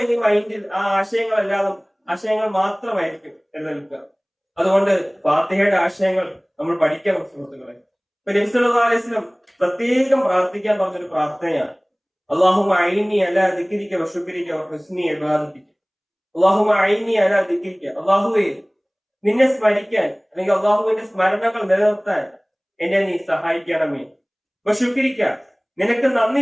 ഈ മൈൻഡിൽ ആ ആശയങ്ങൾ മാത്രമായിരിക്കും നിലനിൽക്കുക. അതുകൊണ്ട് ഫാത്തിഹയുടെ ആശയങ്ങൾ നമ്മൾ പഠിക്കണം സുഹൃത്തുക്കളെ. ഇപ്പൊ നബി സല്ലല്ലാഹു അലൈഹി വസല്ലം പ്രത്യേകം പ്രാർത്ഥിക്കാൻ പറഞ്ഞൊരു പ്രാർത്ഥനയാണ്, അല്ലാഹുമ്മ അഇന്നി അലാ ദിക്രിക വശുക്രിക വഹുസ്നി ഇബാദതിക. അല്ലാഹുമ്മ അഇന്നി അലാ ദിക്രിക, അല്ലാഹുവേ നിന്നെ സ്മരിക്കാൻ അല്ലെങ്കിൽ അള്ളാഹുവിന്റെ സ്മരണകൾ നിലനിർത്താൻ എന്നെ നീ സഹായിക്കണമേ. വശുക്രിക, നിനക്ക്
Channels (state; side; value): identical; both; correlation 1.00